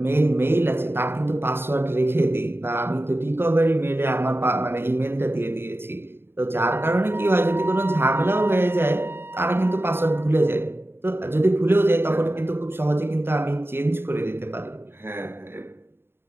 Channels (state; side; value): late; left; 0.11 ms